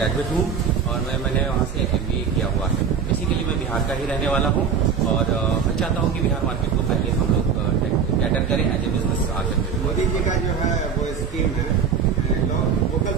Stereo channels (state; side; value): quieter; left; 6.6 dB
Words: हूँ और मैंने वहाँ से MBA किया हुआ है। बेसिकली मैं बिहार का ही रहने वाला हूँ और मैं चाहता हूँ कि बिहार मार्केट को पहले हम लोग कैटर करें एज ए बिजनेस आकर के। मोदी जी का जो है वो स्कीम है वोकल